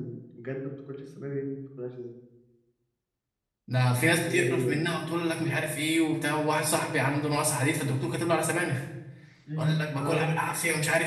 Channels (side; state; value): both; identical; correlation 1.00